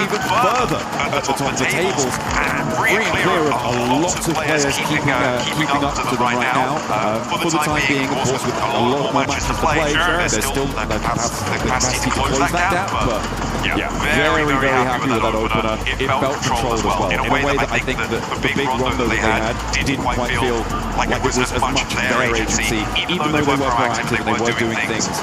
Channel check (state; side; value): identical; both; correlation 1.00